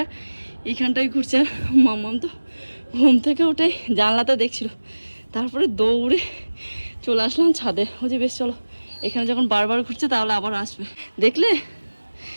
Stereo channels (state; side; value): inverted; both; correlation -1.00